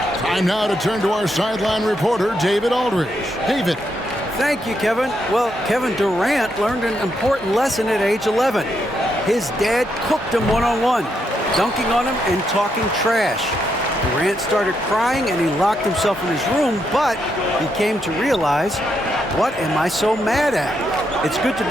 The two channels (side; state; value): both; normal; correlation 0.79